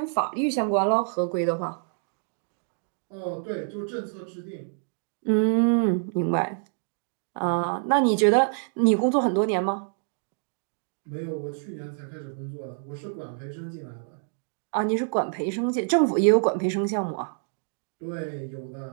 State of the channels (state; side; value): silent; left; 60 dB below the other